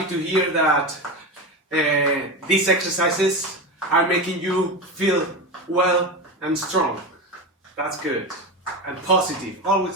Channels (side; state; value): both; normal; correlation 0.21